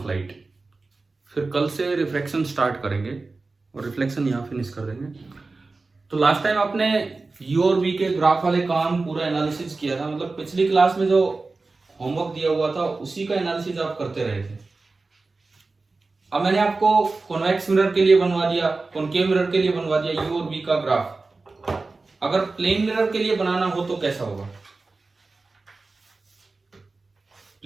लाइट। फिर कल से रिफ्लेक्शन स्टार्ट करेंगे और रिफ्लेक्शन यहाँ फिनिश कर देंगे। तो लास्ट टाइम आपने यू और वी के ग्राफ वाले काम पूरा एनालिसिस किया था, मतलब पिछली क्लास में जो होमवर्क दिया हुआ था उसी का एनालिसिस आप करते रहे थे। अब मैंने आपको कॉन्वेक्स मिरर के लिए बनवा दिया, कॉनकेव मिरर के लिए बनवा दिया यू और वी का ग्राफ। अगर प्लेन मिरर के लिए बनाना हो तो कैसा होगा?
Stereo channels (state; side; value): quieter; left; 3.7 dB